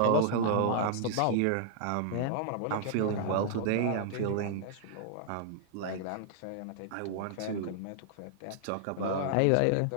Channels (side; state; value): both; different; correlation -0.01